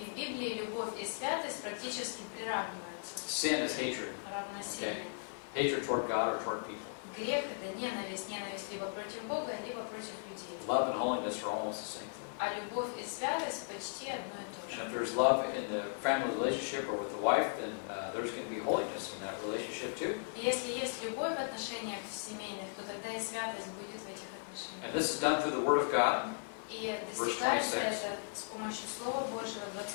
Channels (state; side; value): silent; right; digital silence